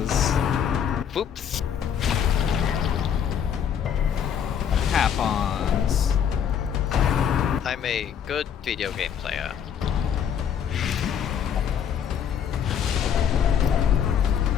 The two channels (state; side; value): quieter; right; 8.4 dB